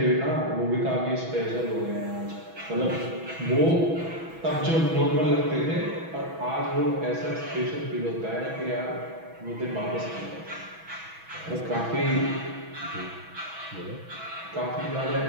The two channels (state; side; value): late; left; 6.1 ms